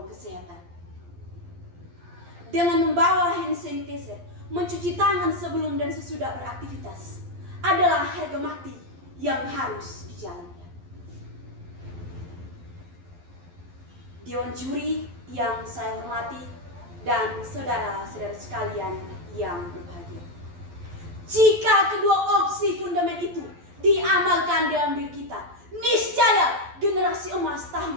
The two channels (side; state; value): left; late; 12 ms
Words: kesehatan. Dengan membawa hand sanitizer, mencuci tangan sebelum dan sesudah beraktivitas adalah harga mati yang harus dijalankan. Dewan juri yang saya hormati dan saudara-saudara sekalian yang berbahagia. Jika kedua opsi fundament itu diamalkan dalam diri kita, niscaya generasi emas